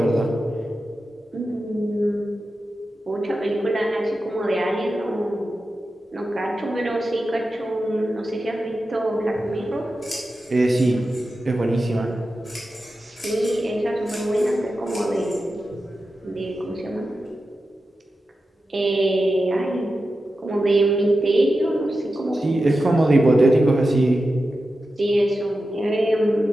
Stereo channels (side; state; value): both; normal; correlation 0.92